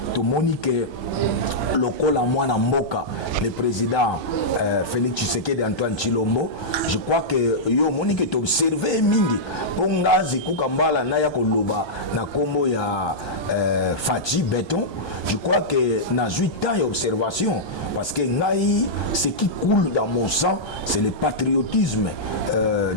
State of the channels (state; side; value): late; right; 1.2 ms